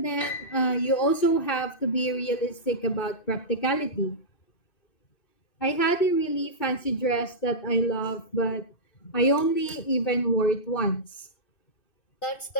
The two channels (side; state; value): right; late; 2.6 ms